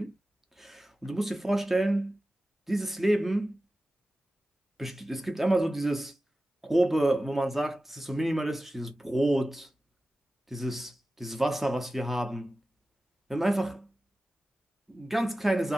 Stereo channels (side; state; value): both; normal; correlation 0.95